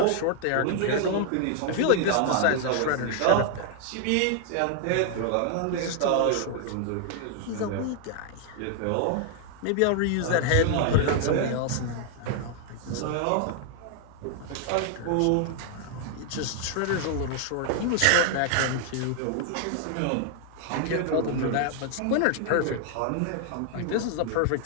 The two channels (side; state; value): both; different; correlation 0.00